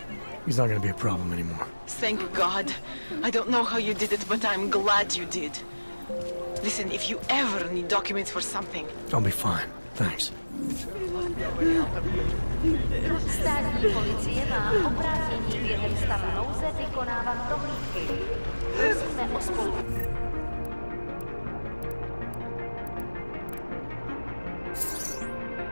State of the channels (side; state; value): both; inverted; correlation -1.00